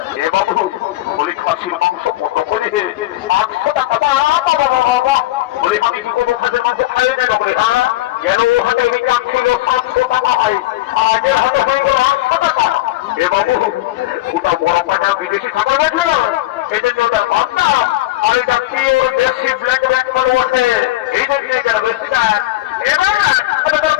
এ বাবু বলি খাসির মাংস কত করে 800 টাকা। বাবা বাবা বলি আমি কি কোনো খাসির মাংস খাই না বলে হ্যাঁ যেন ও হাতে আমি ছিল 700 টাকা হয় আর এর হাতে হয়ে গেল 800 টাকা। এ বাবু ওটা বড় পাঁচা বিদেশি খাবার বলছে না এই জন্য ওটার বান্না আর এটা কি ওর দেশি ব্ল্যাক ব্ল্যাক করে বসে এই জন্য এটার বেশিটা এবার ওটা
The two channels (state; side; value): quieter; right; 16.9 dB